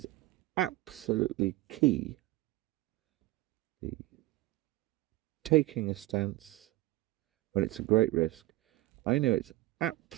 absolutely key. The taking a stance when it's a great risk, I know it's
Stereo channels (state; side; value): quieter; left; 17.6 dB